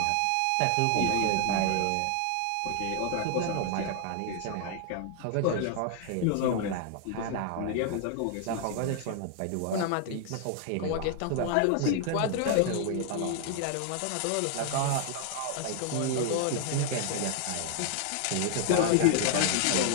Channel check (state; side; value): different; both; correlation 0.00